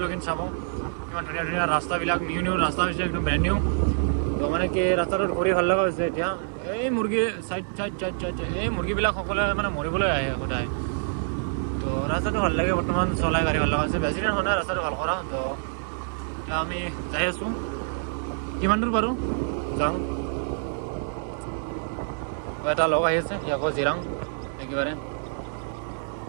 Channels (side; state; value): left; silent; 61 dB below the other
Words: চাব, কিমান ধুনীয়া ধুনীয়া ৰাস্তাবিলাক, নিউ ৰাস্তা হৈছে, একদম ব্ৰেণ্ড নিউ। তো মানে কি ৰাস্তাটোত ঘূৰি ভাল লগা হৈছে। এতিয়া এই মুৰ্গী চাইড এই মুৰ্গীবিলাক সকলোৱে মানে মৰিবলৈ আহে সদায়। তো ৰাস্তাটো ভাল লাগে, বৰ্তমান চলাই গাড়ী ভাল লগা হৈছে, বেছি দিন হোৱা নাই ৰাস্তাটো ভাল কৰা। তো এতিয়া আমি যাই আছোঁ, কিমান দূৰ পাৰোঁ যাওঁ। এটা লগ আহি আছে, সি আকৌ জিৰাং একেবাৰে।